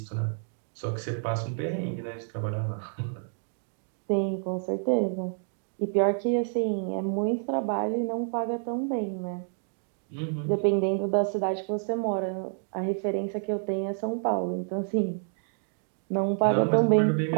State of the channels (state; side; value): silent; left; digital silence